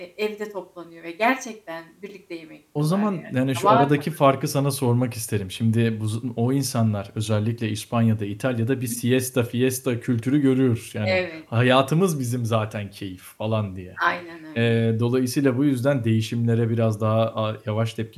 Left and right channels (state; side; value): identical; both; correlation 1.00